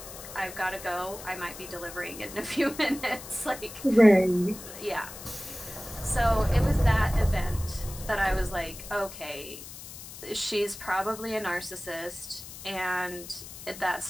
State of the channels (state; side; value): noise; left; hiss, 13 dB below the sound